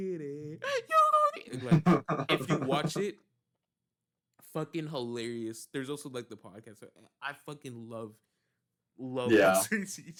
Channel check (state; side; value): identical; both; correlation 1.00